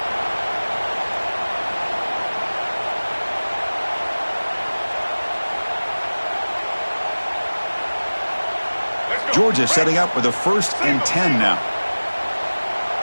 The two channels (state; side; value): inverted; both; correlation -1.00